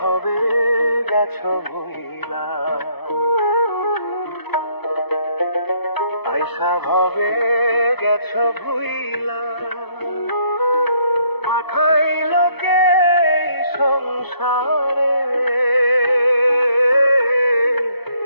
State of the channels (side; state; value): right; late; 0.98 ms